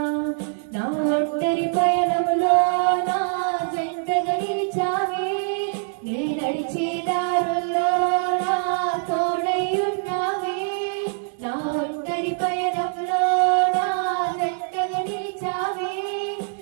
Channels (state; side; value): silent; left; digital silence